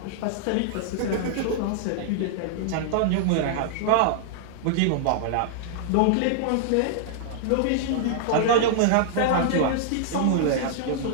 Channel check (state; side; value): different; both; correlation -0.01